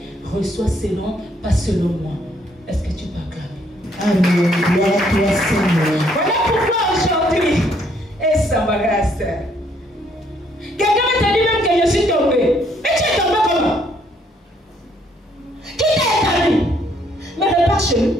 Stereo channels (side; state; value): both; normal; correlation 0.68